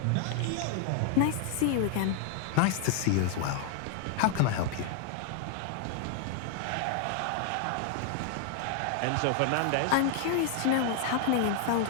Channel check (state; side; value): different; both; correlation 0.00